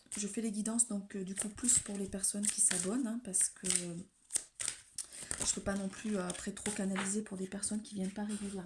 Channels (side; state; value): both; identical; correlation 1.00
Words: fais les guidances donc du coup plus pour les personnes qui s'abonnent parce que je ne peux pas non plus après trop canaliser pour des personnes qui viennent pas